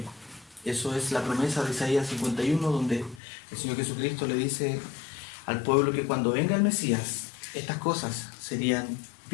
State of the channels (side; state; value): right; drops out; at 3.2 s